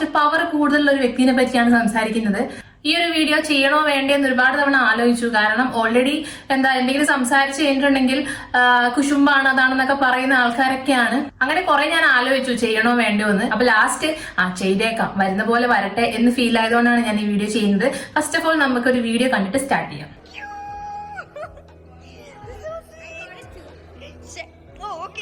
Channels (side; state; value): both; identical; correlation 1.00